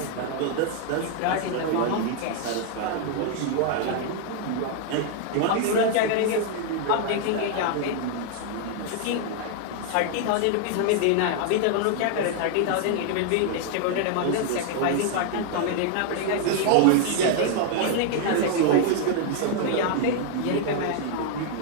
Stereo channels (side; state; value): both; different; correlation 0.00